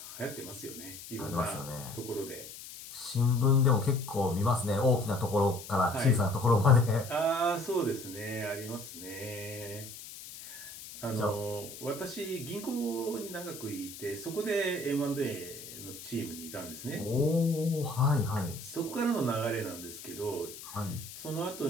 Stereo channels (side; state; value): left; noise; hiss, 13 dB below the sound